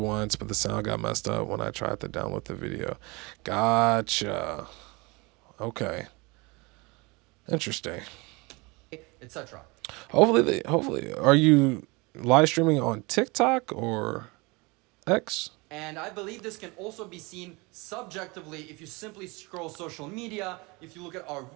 but the sound got messed up when I tried to download the video. Gotcha. Okay. Interesting. Etc. Hopefully, are you live streaming on TikTok or X? And I believe this can also be seen subjectively if you simply scroll social media, if you look at our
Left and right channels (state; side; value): quieter; left; 26.1 dB